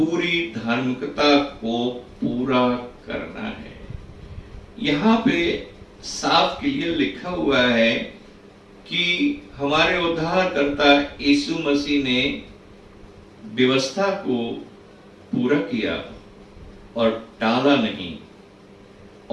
धार्मिकता को पूरा करना है। यहाँ पे साफ क्लियर लिखा हुआ है कि हमारे उद्धारकर्ता यीशु मसीह ने व्यवस्था को पूरा किया और टाला नहीं,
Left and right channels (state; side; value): identical; both; correlation 1.00